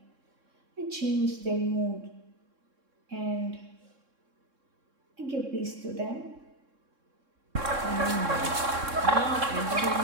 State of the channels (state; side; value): late; left; 3.6 ms